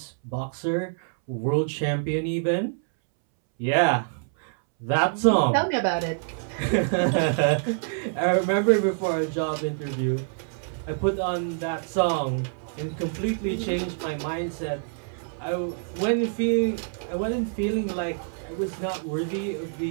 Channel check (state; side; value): silent; left; 61 dB below the other